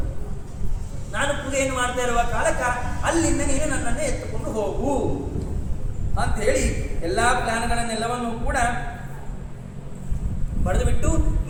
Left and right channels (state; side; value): identical; both; correlation 1.00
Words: ನಾನು ಪೂಜೆಯನ್ನು ಮಾಡ್ತಾ ಇರುವ ಕಾಲಕ್ಕ ಅಲ್ಲಿಂದ ನೀನು ನನ್ನನ್ನು ಎತ್ತುಕೊಂಡು ಹೋಗು ಅಂತ ಹೇಳಿ ಎಲ್ಲ ಪ್ಲಾನ್ಗಳನ್ನೆಲ್ಲವನ್ನೂ ಕೂಡ ಬರೆದು ಬಿಟ್ಟು